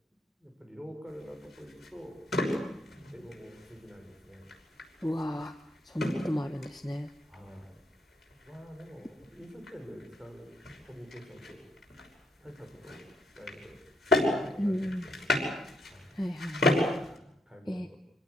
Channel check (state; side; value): normal; both; correlation 0.74